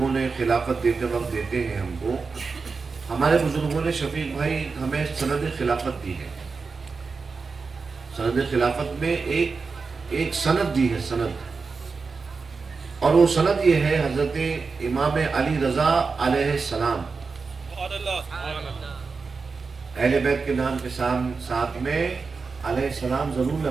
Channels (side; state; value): left; quieter; 4.7 dB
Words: نے خلافت دیتے وقت دیتے ہیں ہم کو. ہمارے بزرگوں نے شفیق بھائی ہمیں سند خلافت دی ہے. سند خلافت میں ایک سند دی ہے، سند. اور وہ سند یہ ہے حضرت امام علی رضا علیہ السلام. اہل بیت کے نام کے ساتھ میں علیہ السلام ضرور